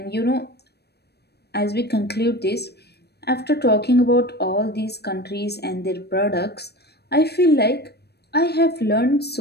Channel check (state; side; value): late; right; 0.47 ms